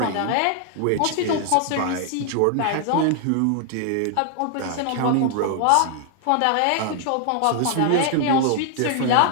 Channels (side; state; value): both; different; correlation 0.00